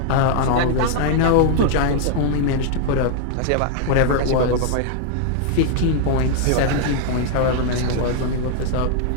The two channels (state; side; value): different; both; correlation 0.00